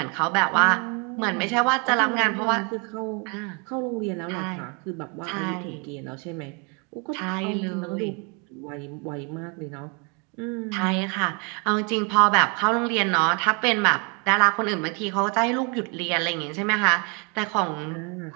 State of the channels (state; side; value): quieter; left; 33.6 dB